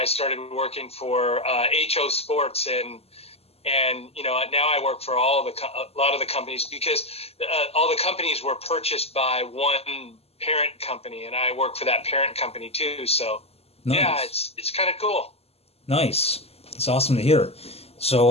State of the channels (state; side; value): late; right; 0.29 ms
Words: started working for HO Sports and now I work for a lot of the companies because all the companies were purchased by one parent company, and I work for that parent company too. So yeah, Nice. it's kind of cool. Nice. It's awesome to hear.